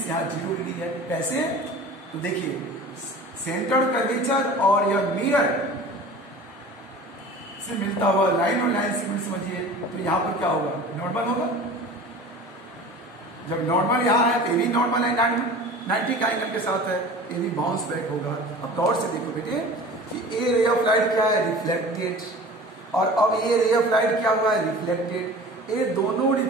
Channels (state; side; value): normal; both; correlation 0.40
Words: यहाँ 0 डिग्री है। कैसे? तो देखिए सेंटर कर्वेचर और यह मिरर से मिलता हुआ लाइन और लाइन सेगमेंट समझिए। तो यहाँ पर क्या होगा? नॉर्मल होगा। जब नॉर्मल यहाँ है तो ये भी नॉर्मल है, 90 का एंगल के साथ है, ये भी बाउंस बैक होगा। अब गौर से देखो बेटे कि ए रे ऑफ लाइट क्या है? रिफ्लेक्टेड। और अब ये रे ऑफ लाइट क्या हुआ है? रिफ्लेक्टेड। ये दोनों